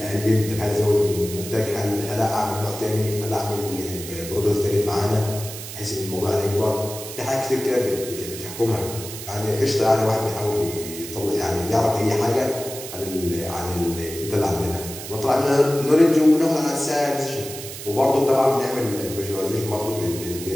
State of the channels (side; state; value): right; noise; hiss, 10 dB below the sound